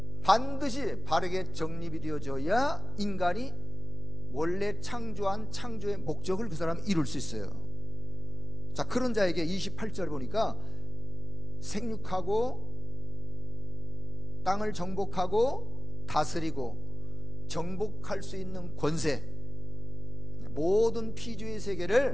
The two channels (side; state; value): right; noise; hum, 4 dB below the sound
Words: 반드시 바르게 정립이 되어져야 인간이 원래 창조한 창조의 목적을 그 사람이 이룰 수 있어요. 자, 그런 자에게 28절 보니까 생육하고 땅을 정복하고 다스리고 정복할 수 있는 권세, 모든 피조의